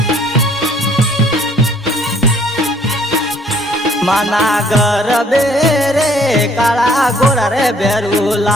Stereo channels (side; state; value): both; normal; correlation 0.61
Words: माना गरबे रे काला गोरा रे बेरू